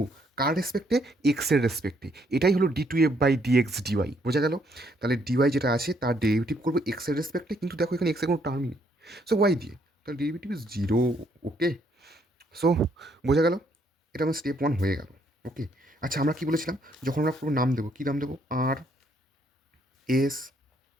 কার রেসপেক্টে, এক্সের রেসপেক্টে। এটাই হলো d two F by dx dy, বোঝা গেল। তাহলে ডিওয়াই যেটা আছে তার ডেরিভেটিভ করবো এক্সের রেসপেক্টে, কিন্তু দেখো এখানে এক্সের কোনো টার্মই নেই, সো ওয়াই দিয়ে, তাহলে ডেরিভেটিভ ইজ 0। ওকে, সো বোঝা গেল, এটা আমার স্টেপ 1 হয়ে গেল। ওকে, আচ্ছা আমরা কী বলেছিলাম, যখন আমরা পুরো নাম দেবো, কী নাম দেবো, আর এস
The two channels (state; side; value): normal; both; correlation 0.70